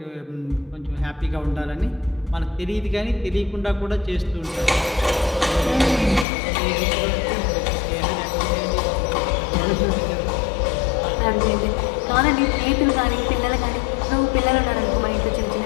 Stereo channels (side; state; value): right; drops out; at 6.2 s